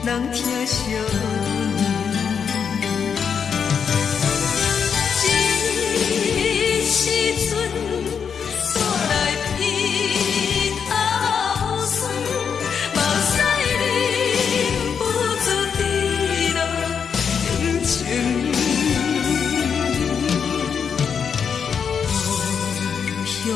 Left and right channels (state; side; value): quieter; right; 6.8 dB